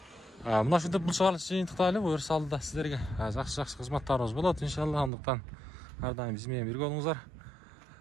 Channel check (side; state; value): left; drops out; at 5.1 s